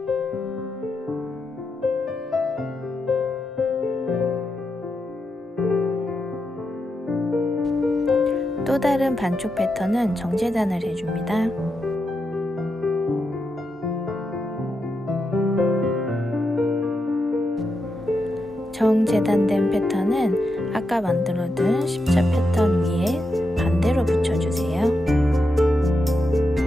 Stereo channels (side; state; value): both; normal; correlation 0.85